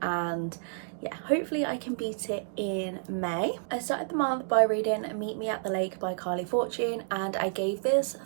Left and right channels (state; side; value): silent; left; digital silence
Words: and yeah, hopefully I can beat it in May. I started the month by reading Meet Me at the Lake by Carly Fortune and I gave this